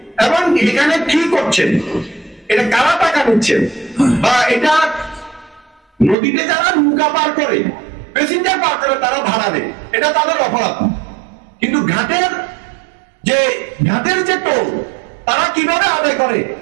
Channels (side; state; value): left; drops out; at 6.2 s